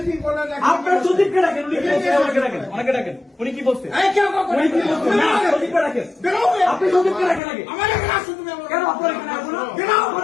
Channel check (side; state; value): right; drops out; at 7.4 s